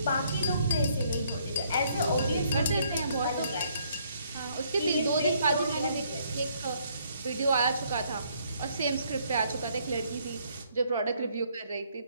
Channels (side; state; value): both; inverted; correlation -0.67